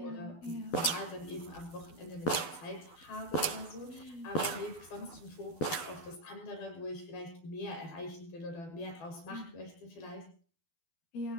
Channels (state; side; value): late; right; 12 ms